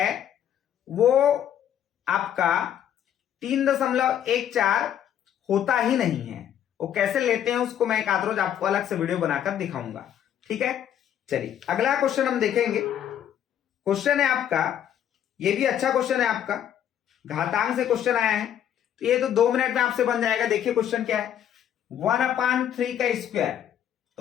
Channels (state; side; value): quieter; right; 10.0 dB